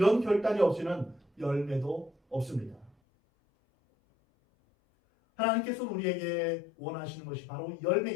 결단이 없이는 열매도 없습니다. 하나님께서는 우리에게 원하시는 것이 바로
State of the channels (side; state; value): right; drops out; at 2.9 s